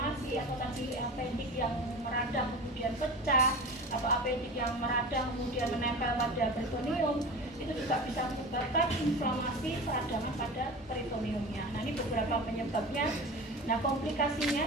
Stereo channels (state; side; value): normal; both; correlation 0.32